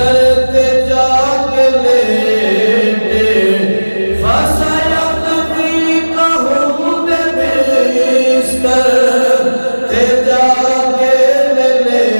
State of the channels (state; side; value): inverted; both; correlation -1.00